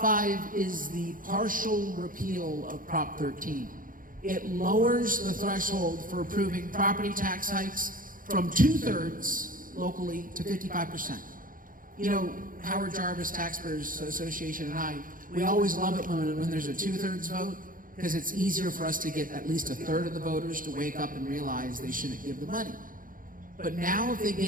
is the partial repeal of Prop 13. It lowers the threshold for approving property tax hikes from 2/3 locally to 55%. You know, Howard Jarvis Taxpayers Association and I, we always love it when there's a 2/3 vote, because it's easier for us to get at least 1/3 of the voters to wake up and realize they shouldn't give the money. But now if they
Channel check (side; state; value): left; late; 0.40 ms